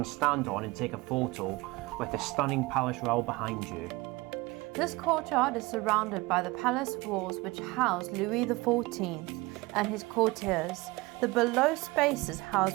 stand on and take a photo with the stunning Palais Royal behind you. This courtyard is surrounded by the palace walls which house Louis XIV and his courtiers. The below spaces house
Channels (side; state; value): left; quieter; 22.5 dB